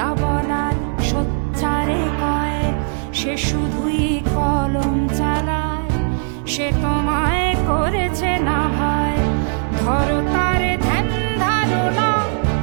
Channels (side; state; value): left; silent; 63 dB below the other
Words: বলার সোচ্চারে কয়। সে শুধুই কলম চালায়, সে তোমায় করেছে না ভয়। ধরো তার ধ্যান ধারণা